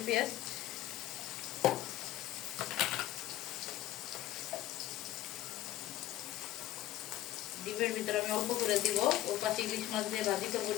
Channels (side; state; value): right; quieter; 14.3 dB